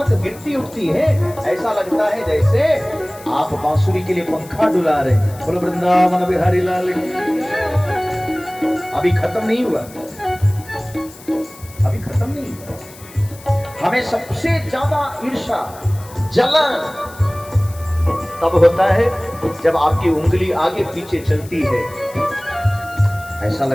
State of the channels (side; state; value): left; noise; hiss, 20 dB below the sound